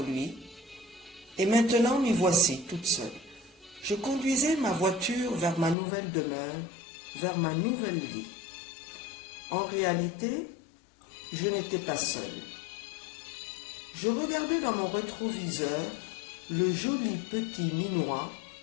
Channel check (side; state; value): right; drops out; at 5.8 s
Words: lui, et maintenant m'y voici toute seule. Je conduisais ma voiture vers ma nouvelle demeure, vers ma nouvelle vie. En réalité, je n'étais pas seule. Je regardais dans mon rétroviseur le joli petit minois